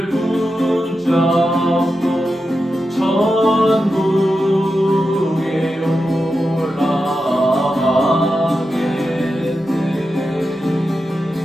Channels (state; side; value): normal; both; correlation 0.90